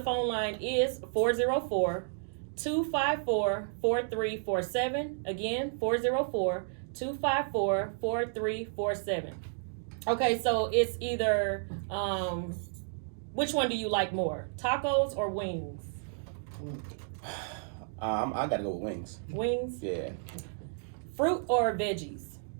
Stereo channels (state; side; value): silent; left; digital silence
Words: phone line is 404-254-4347. Again, 404-254-4347. Okay, so it's either, which one do you like more? Tacos or wings? I gotta go with wings. Wings? Yeah. Fruit or veggies?